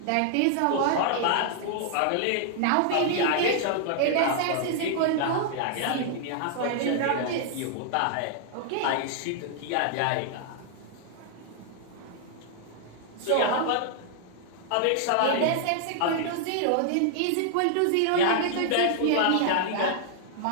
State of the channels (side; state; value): both; different; correlation -0.01